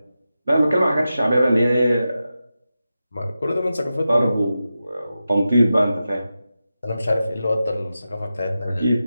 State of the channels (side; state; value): both; inverted; correlation -0.92